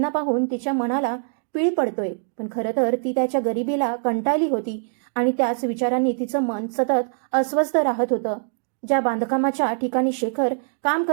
पाहून तिच्या मनाला पीळ पडतोय, पण खरं तर ती त्याच्या गरिबीला कंटाळली होती आणि त्याच विचारांनी तिचं मन सतत अस्वस्थ राहत होतं. ज्या बांधकामाच्या ठिकाणी शेखर काम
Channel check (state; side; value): silent; left; digital silence